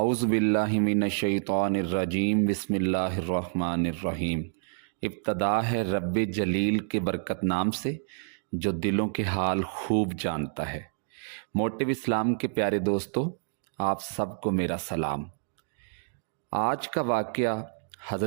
बिल्लाहि मिनश्शैतानिर्रजीम बिस्मिल्लाहिर्रहमानिर्रहीम। इब्तदा है रब्बे जलील के बरकत नाम से जो दिलों के हाल खूब जानता है। मोटिव इस्लाम के प्यारे दोस्तों, आप सबको मेरा सलाम। आज का वाक़या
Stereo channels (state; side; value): silent; left; digital silence